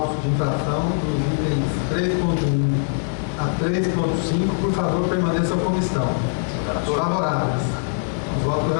de infração dos itens 3.1 a 3.5, por favor, permaneçam como estão. Favoráveis ao voto do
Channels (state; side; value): silent; right; digital silence